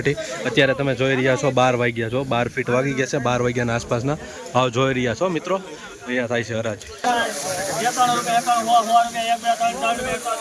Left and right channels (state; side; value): identical; both; correlation 1.00